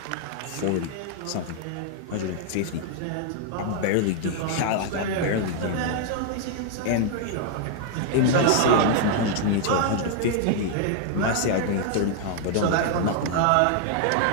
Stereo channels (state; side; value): different; both; correlation 0.00